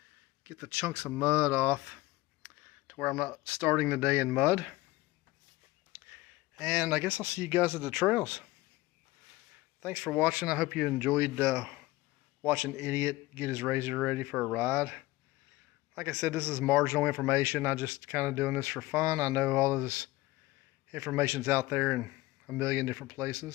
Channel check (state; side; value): quieter; right; 19.2 dB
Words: get the chunks of mud off to where I'm not starting the day in mud. And I guess I'll see you guys at the trails. Thanks for watching. I hope you enjoyed watching Idiot get his RZR ready for a ride. Like I said, this is marginal information. I'm just kind of doing this for fun. I know all of this information's out there in a million different